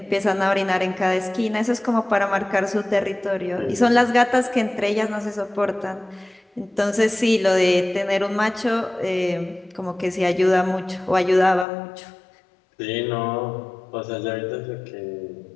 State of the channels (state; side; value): drops out; right; at 11.7 s